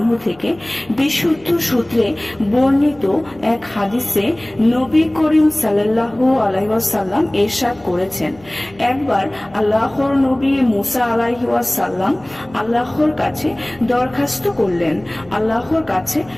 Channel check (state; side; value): noise; left; hum, 25 dB below the sound